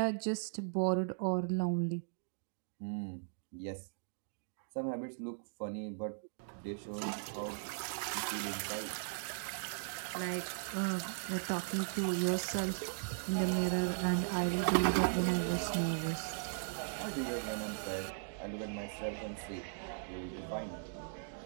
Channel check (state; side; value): silent; left; digital silence